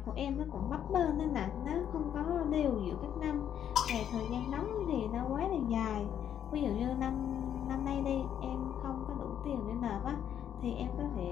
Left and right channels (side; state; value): right; quieter; 9.6 dB